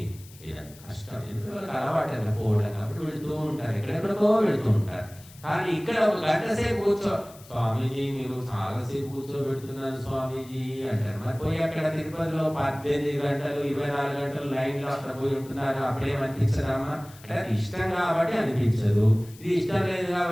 కష్టం. ఎందుకు అలవాటు అట్లా పోవడం కాబట్టి వెళుతూ ఉంటారు, ఎక్కడెక్కడికో వెళుతూ ఉంటారు. కానీ ఇక్కడ ఒక గంట సేపు కూర్చో, స్వామీజీ మీరు చాలాసేపు కూర్చోబెడుతున్నారు స్వామీజీ అంటారు. మరి పోయి అక్కడ తిరుపతిలో 18 గంటలు 24 గంటలు లైన్లో అక్కడ పోయి ఉంటున్నారు, అప్పుడేమనిపించదమ్మా అంటే అది ఇష్టం కాబట్టి అనిపించదు. ఇది ఇష్టం లేదు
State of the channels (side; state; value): left; noise; hiss, 22 dB below the sound